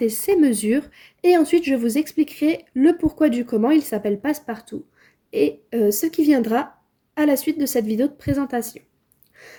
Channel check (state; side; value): identical; both; correlation 1.00